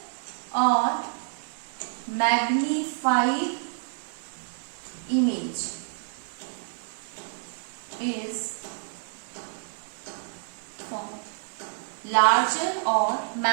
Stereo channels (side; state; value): left; silent; digital silence